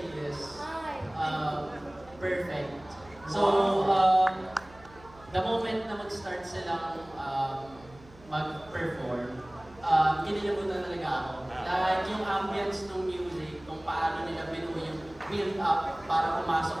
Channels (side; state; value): right; noise; hum, 23 dB below the sound